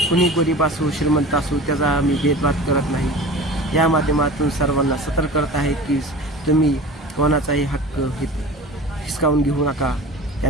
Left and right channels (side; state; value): both; normal; correlation 0.37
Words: गरीब असो श्रीमंत असो त्याचा आम्ही भेदभाव करत नाही. या माध्यमातून सर्वांना सतर्क करत आहे की तुम्ही कोणाचाही हक्क हिसकावून घेऊ नका,